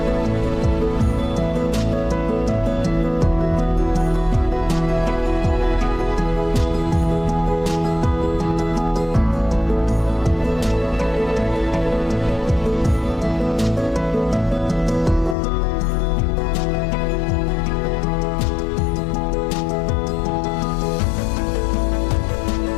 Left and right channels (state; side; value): drops out; right; at 15.4 s